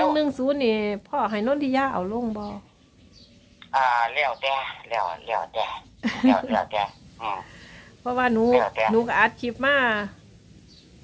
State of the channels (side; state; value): both; identical; correlation 1.00